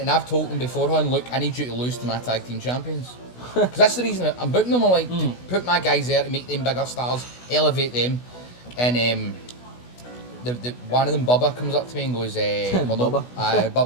I've told them beforehand, look, I need you to lose to my tag team champions. Because that's the reason I'm booking them. I like to put my guys there to make them bigger stars, elevate them. And the one of them, Bubba, comes up to me and goes, Bubba?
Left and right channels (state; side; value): late; right; 16 ms